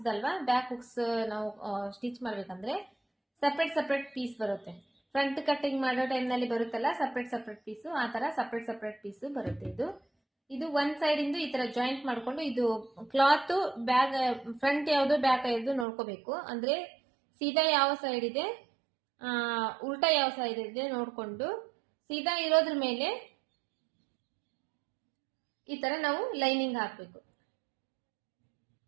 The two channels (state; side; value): drops out; left; at 15.9 s